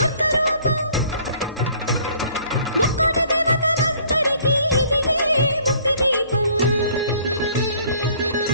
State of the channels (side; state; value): both; inverted; correlation -0.57